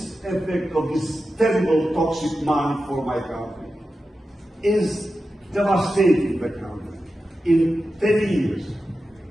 effect of this terrible toxic money for my country is devastating the country. In 10 years,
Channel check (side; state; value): both; normal; correlation 0.91